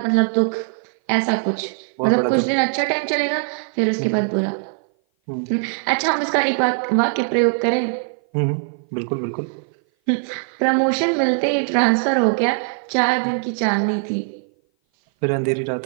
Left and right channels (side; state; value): left; silent; 57 dB below the other